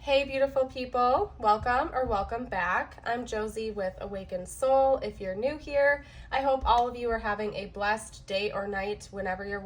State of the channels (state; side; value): identical; both; correlation 1.00